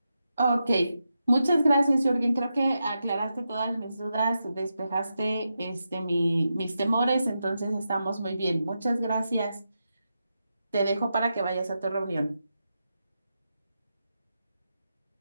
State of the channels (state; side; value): inverted; both; correlation -0.87